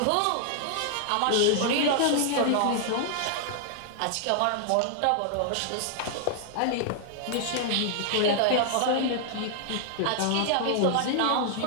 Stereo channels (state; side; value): different; both; correlation -0.01